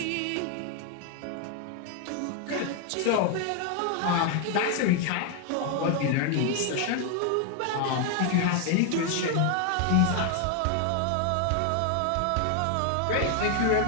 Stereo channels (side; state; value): both; different; correlation 0.00